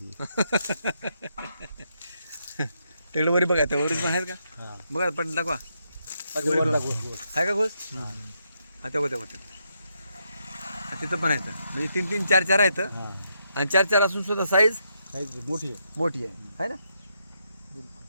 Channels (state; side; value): inverted; both; correlation -0.79